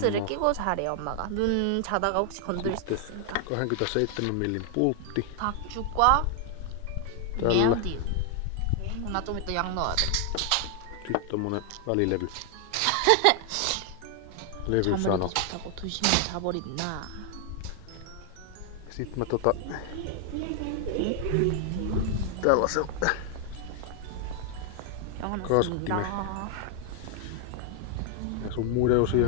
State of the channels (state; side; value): different; both; correlation 0.00